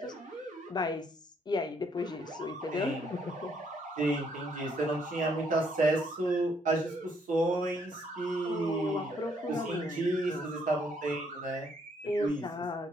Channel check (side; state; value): both; normal; correlation 0.69